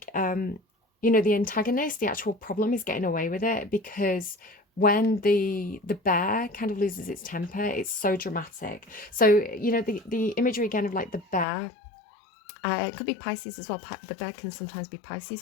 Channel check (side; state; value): right; drops out; at 11.5 s